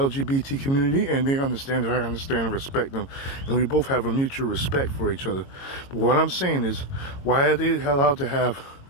community and they understand that I understand and respect them. And we both have a mutual respect for each other. But what I'm saying is, why are they allowed to have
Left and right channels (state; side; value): late; right; 22 ms